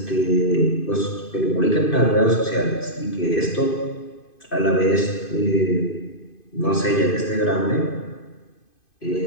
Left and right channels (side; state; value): right; late; 2.5 ms